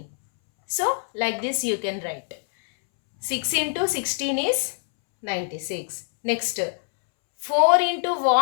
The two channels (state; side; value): silent; right; 63 dB below the other